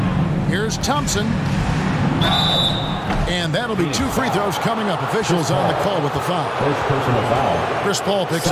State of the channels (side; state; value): both; identical; correlation 1.00